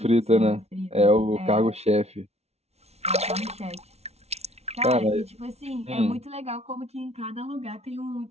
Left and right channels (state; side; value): late; left; 0.31 ms